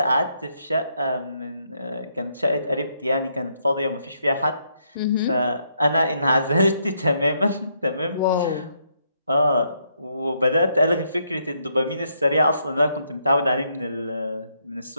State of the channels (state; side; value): inverted; both; correlation -0.75